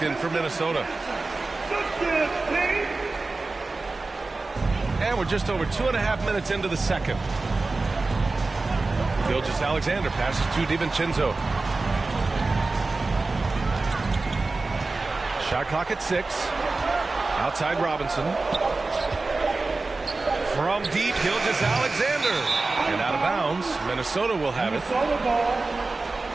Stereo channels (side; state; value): left; quieter; 3.5 dB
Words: in for Minnesota. And we're just over 2.5 minutes into the second. Gilgeous-Alexander passes to DiVincenzo. Shot clock at 6. Outside Robinson. From deep, Gilgeous-Alexander. And out of bounds, Minnesota will have it.